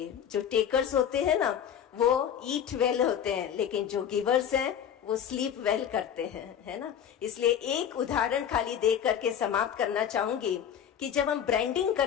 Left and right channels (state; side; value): quieter; right; 9.0 dB